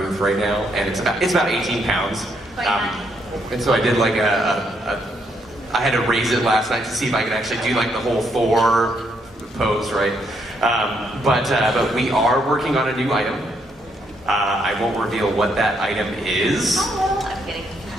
right now, and it's about 18 pounds. And so I did like I had to raise it last night to see if I could actually do like the whole Thor pose, right? But we are working on a new item. I won't reveal what that item is. Oh, I'm kidding.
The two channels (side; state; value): both; normal; correlation 0.74